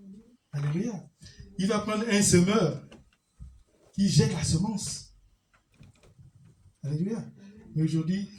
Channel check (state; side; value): identical; both; correlation 1.00